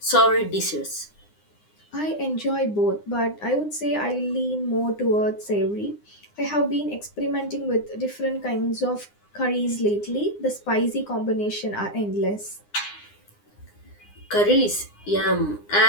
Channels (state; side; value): late; right; 9.8 ms